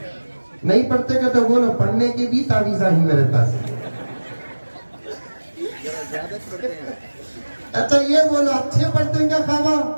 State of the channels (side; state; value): both; inverted; correlation -1.00